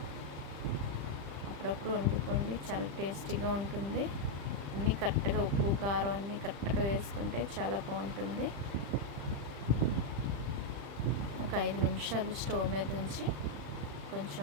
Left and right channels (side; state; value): left; late; 35 ms